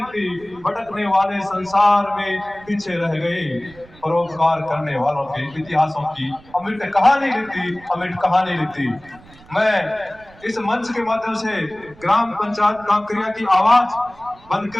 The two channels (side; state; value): right; noise; rumble, 24 dB below the sound